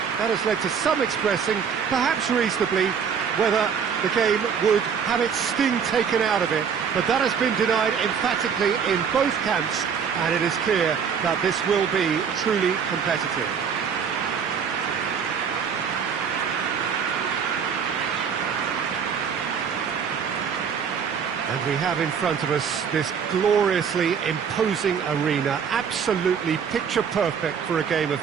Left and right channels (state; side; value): quieter; left; 7.0 dB